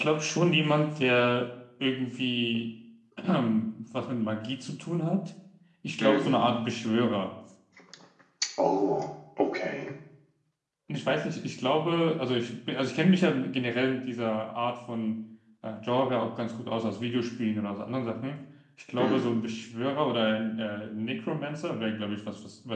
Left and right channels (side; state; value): both; identical; correlation 1.00